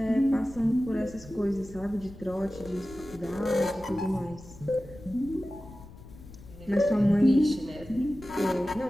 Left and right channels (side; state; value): left; noise; rumble, 18 dB below the sound